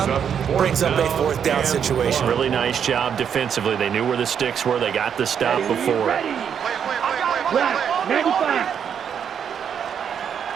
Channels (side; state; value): left; quieter; 7.9 dB